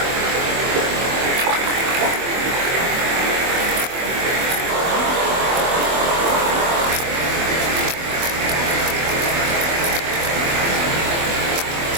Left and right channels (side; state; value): left; late; 24 ms